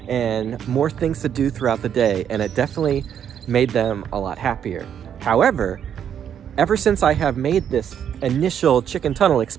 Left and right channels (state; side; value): quieter; left; 8.9 dB